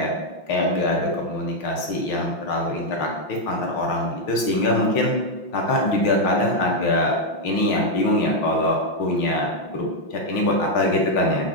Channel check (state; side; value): late; right; 5.8 ms